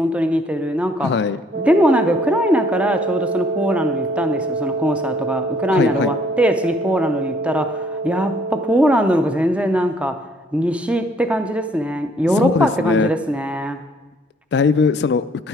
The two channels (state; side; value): normal; both; correlation 0.62